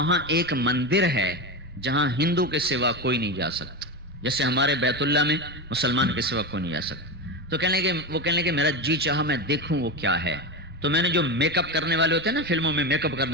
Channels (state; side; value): normal; both; correlation 0.18